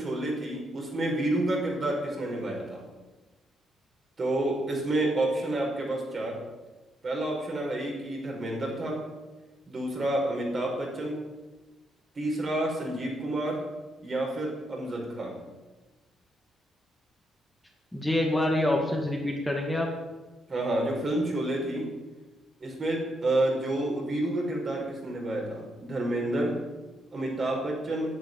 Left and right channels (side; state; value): both; normal; correlation 0.79